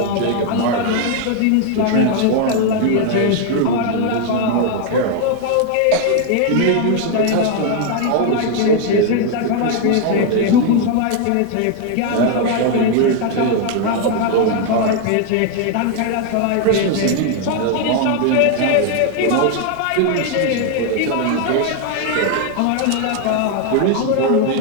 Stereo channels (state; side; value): different; both; correlation 0.00